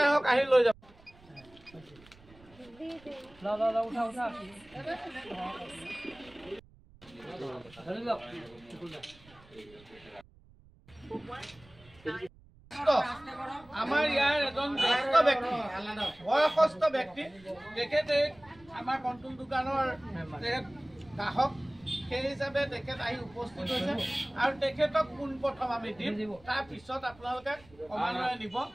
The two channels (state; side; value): noise; right; rumble, 25 dB below the sound